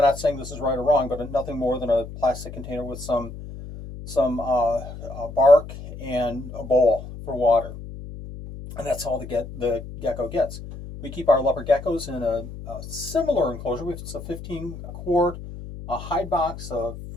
not saying this is right or wrong, but nothing more than a plastic container with some bark and a bowl for water. And that's all the gecko gets. We keep our leopard geckos in a similar enclosure. It's a 15-quart hide box, a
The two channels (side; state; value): left; noise; hum, 12 dB below the sound